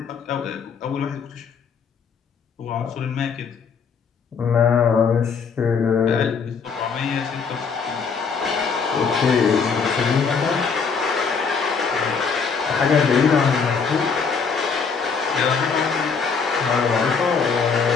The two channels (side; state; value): right; quieter; 5.6 dB